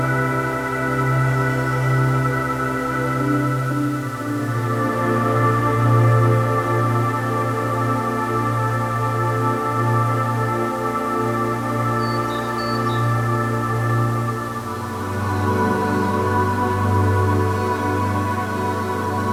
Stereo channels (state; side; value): identical; both; correlation 1.00